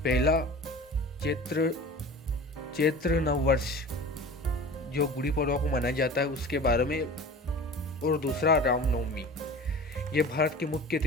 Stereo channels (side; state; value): both; normal; correlation 0.38